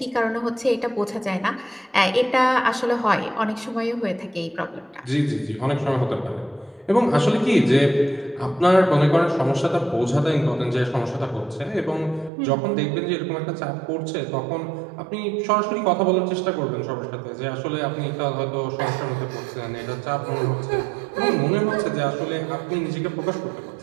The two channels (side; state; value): left; drops out; at 12.3 s